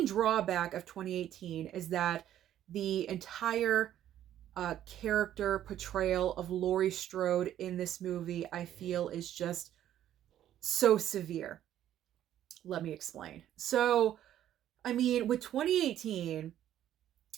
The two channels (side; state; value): left; quieter; 11.6 dB